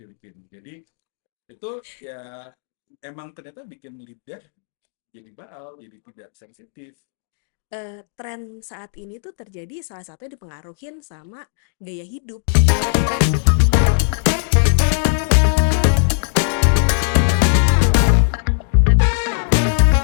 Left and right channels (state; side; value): silent; right; digital silence